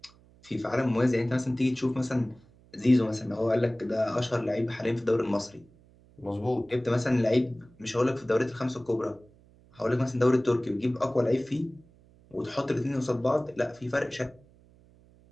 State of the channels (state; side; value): noise; right; hum, 28 dB below the sound